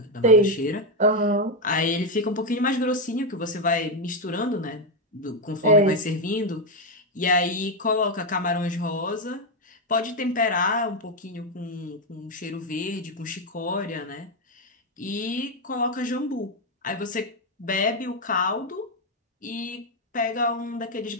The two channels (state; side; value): normal; both; correlation 0.05